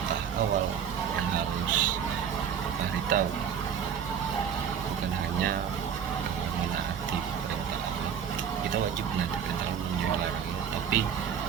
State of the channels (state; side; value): quieter; left; 8.0 dB